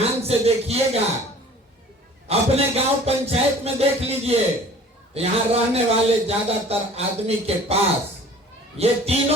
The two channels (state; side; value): normal; both; correlation 0.48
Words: से देखिएगा, अपने गांव पंचायत में देख लीजिए, यहाँ रहने वाले ज्यादातर आदमी के पास ये